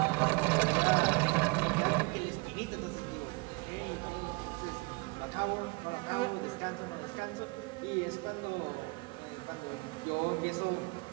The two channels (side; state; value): left; quieter; 28.1 dB